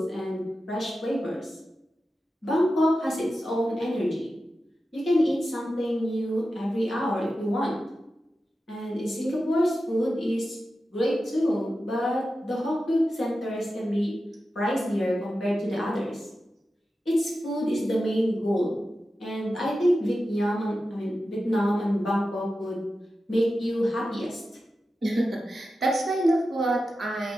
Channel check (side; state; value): both; normal; correlation 0.92